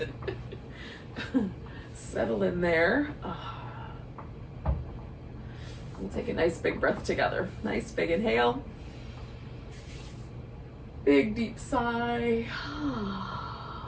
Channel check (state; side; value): identical; both; correlation 1.00